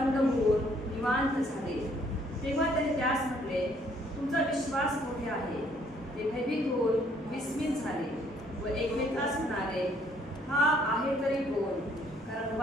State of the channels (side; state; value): both; normal; correlation 0.64